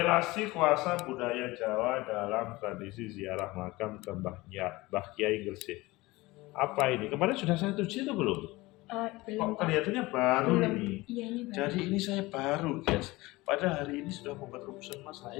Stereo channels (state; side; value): quieter; right; 20.8 dB